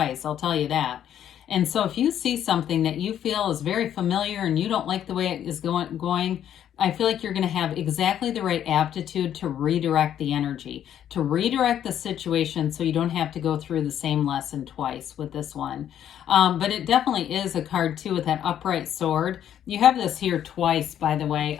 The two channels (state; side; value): quieter; right; 10.3 dB